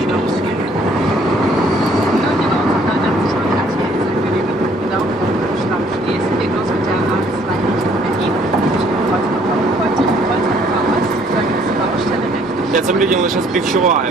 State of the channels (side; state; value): both; normal; correlation 0.62